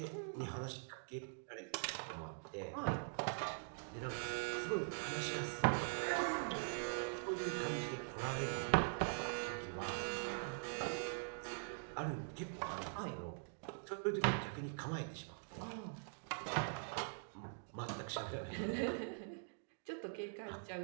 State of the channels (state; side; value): silent; left; digital silence